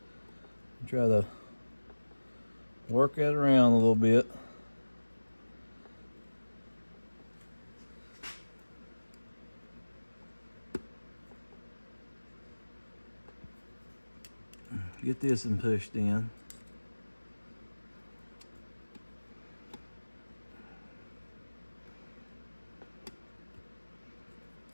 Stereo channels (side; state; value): both; inverted; correlation -1.00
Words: Try to work that around a little bit. Get this and pushed in.